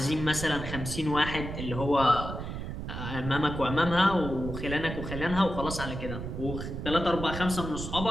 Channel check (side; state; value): right; noise; rumble, 7 dB below the sound